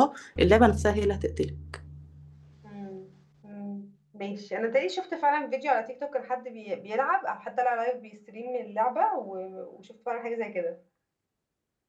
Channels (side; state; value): both; identical; correlation 1.00